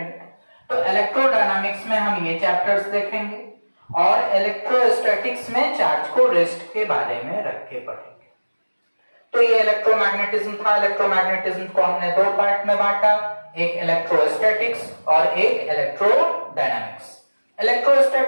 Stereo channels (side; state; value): both; inverted; correlation -1.00